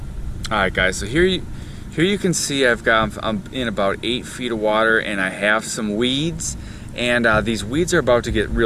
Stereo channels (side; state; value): both; identical; correlation 1.00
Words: Alright guys, so here you can see I'm in about 8 feet of water, and I have some weeds, and these weeds are about to get